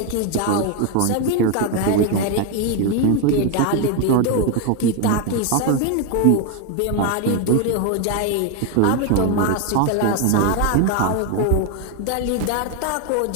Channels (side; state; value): both; different; correlation 0.01